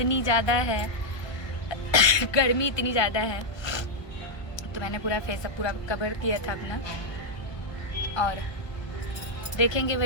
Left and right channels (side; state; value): right; late; 1.2 ms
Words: ज़्यादा है गर्मी इतनी ज़्यादा है, तो मैंने पूरा फेसअप पूरा कवर किया था अपना। और देखेंगे